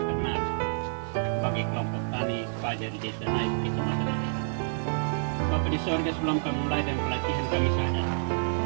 ternak bagi kelompok tani fajar di Desa Naik, Kecamatan Daerah. Bapak di sorga, sebelum kami mulai dan pelatihan kami sadar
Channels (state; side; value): silent; left; digital silence